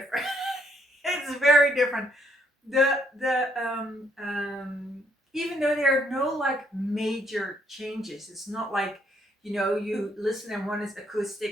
It's very different. The even though there are no like major changes, it's not like, you listen and one is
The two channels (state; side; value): normal; both; correlation 0.71